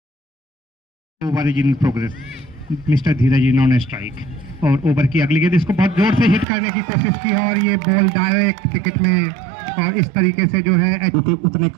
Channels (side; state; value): left; drops out; at 6.5 s